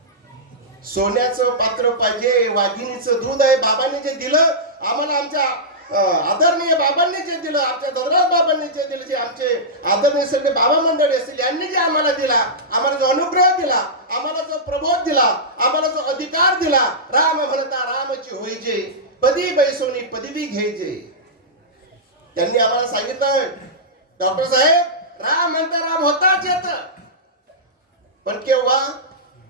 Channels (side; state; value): both; normal; correlation -0.13